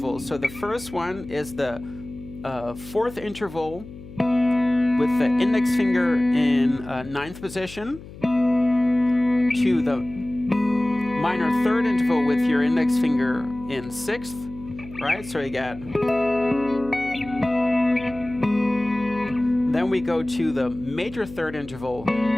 So the first one is the fourth interval with the index finger in ninth position to the minor third interval with your index finger in sixth, right? So you get. Then we go to the major third interval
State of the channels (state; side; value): noise; left; hum, 16 dB below the sound